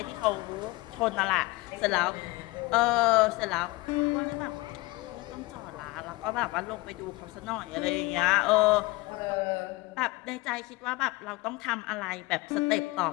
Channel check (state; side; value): quieter; right; 22.5 dB